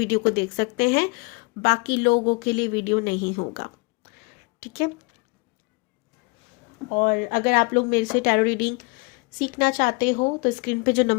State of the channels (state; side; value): quieter; right; 28.3 dB